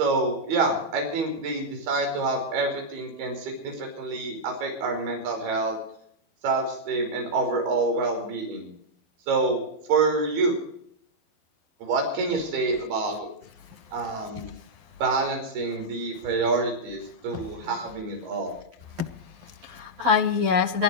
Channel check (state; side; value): late; left; 11 ms